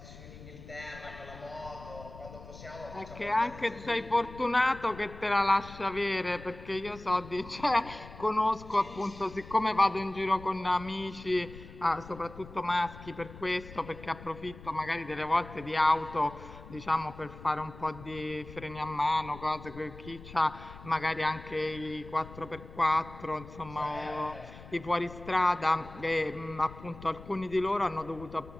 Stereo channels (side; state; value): left; noise; rumble, 16 dB below the sound